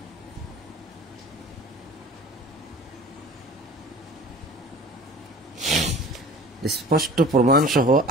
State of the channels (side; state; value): both; normal; correlation 0.44